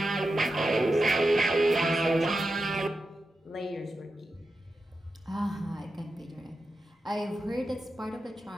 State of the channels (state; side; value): normal; both; correlation 0.90